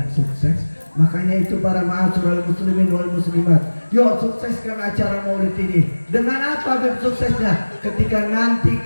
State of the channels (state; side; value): inverted; both; correlation -1.00